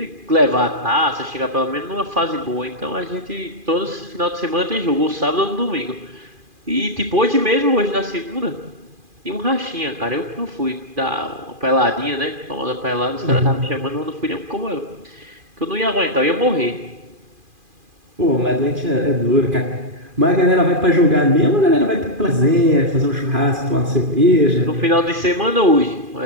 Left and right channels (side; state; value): left; late; 2.4 ms